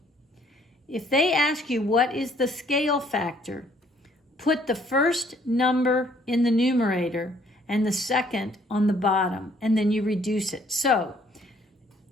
If they ask you what is the scale factor, put the first number in the numerator and the second on the bottom, and then you reduce it. So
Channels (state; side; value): normal; both; correlation 0.63